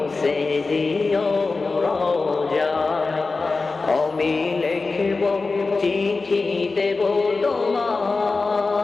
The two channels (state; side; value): quieter; right; 3.9 dB